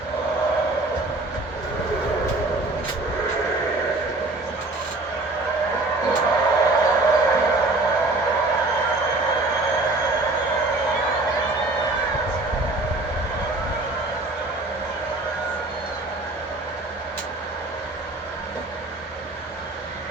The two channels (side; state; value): left; quieter; 3.0 dB